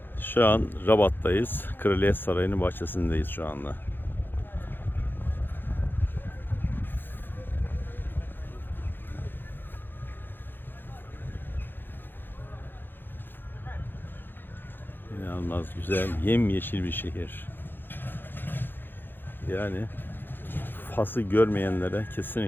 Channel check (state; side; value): late; right; 0.097 ms